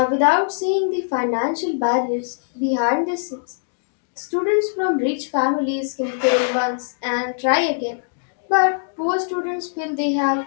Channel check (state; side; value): silent; right; digital silence